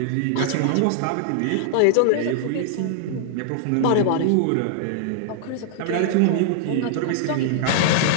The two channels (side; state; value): both; different; correlation -0.01